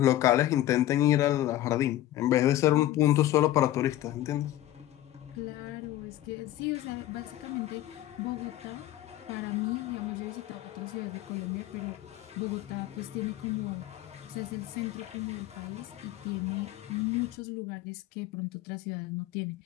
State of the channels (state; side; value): quieter; right; 14.1 dB